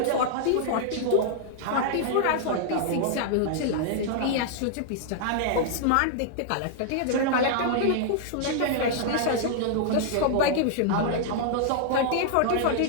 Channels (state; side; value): different; both; correlation -0.01